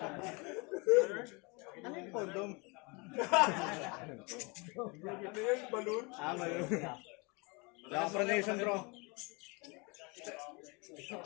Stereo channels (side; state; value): right; quieter; 29.2 dB